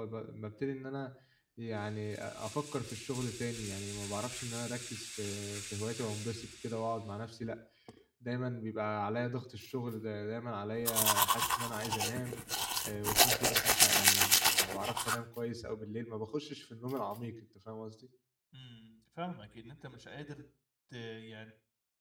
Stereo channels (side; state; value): both; identical; correlation 1.00